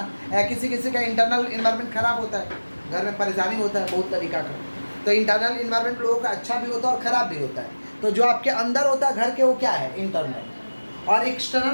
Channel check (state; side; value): inverted; both; correlation -1.00